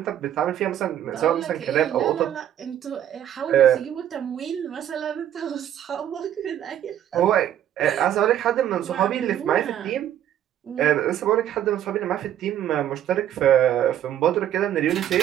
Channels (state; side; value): quieter; left; 10.9 dB